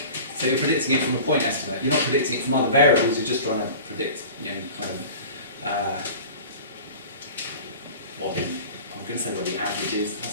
So you're predicting it from a point estimate. You're not predicting it from other variables. You're just trying to predict, what I'm going to say what the average is.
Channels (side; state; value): both; inverted; correlation -0.39